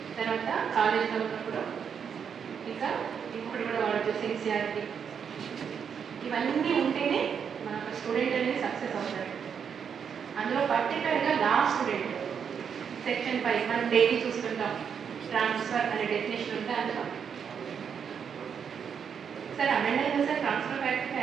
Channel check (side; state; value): left; quieter; 7.2 dB